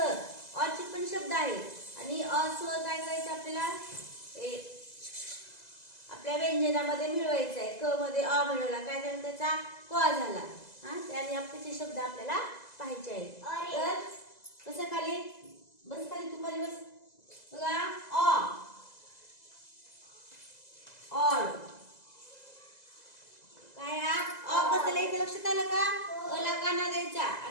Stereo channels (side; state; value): right; late; 2.0 ms